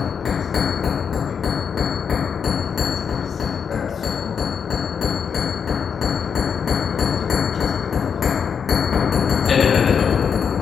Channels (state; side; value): quieter; right; 6.8 dB